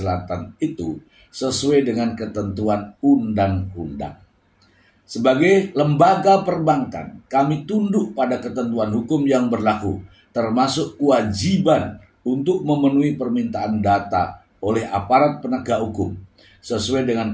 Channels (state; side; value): identical; both; correlation 1.00